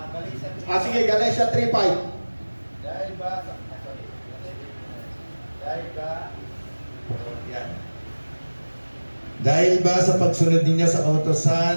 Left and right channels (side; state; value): both; inverted; correlation -1.00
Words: Sige, Galatia 3:5. Dahil ba sa pagsunod ninyo sa